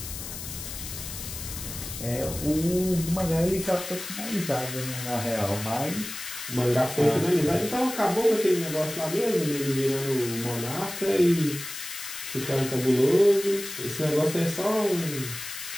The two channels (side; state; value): left; noise; hiss, 9 dB below the sound